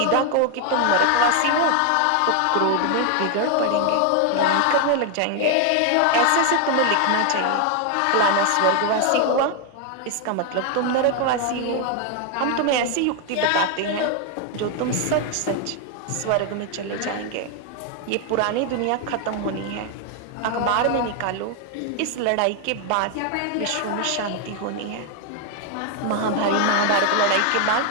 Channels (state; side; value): different; both; correlation 0.01